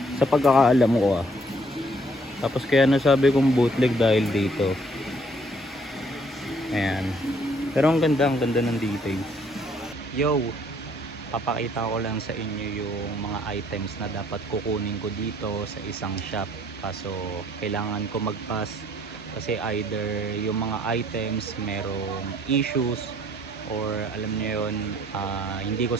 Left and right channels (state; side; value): normal; both; correlation 0.63